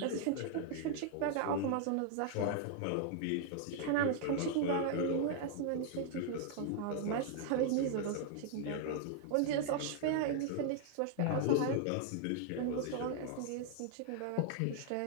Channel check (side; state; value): both; different; correlation 0.00